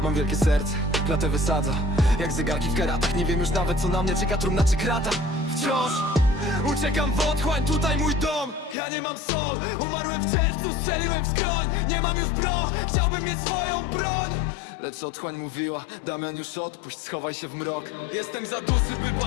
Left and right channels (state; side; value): drops out; right; at 8.8 s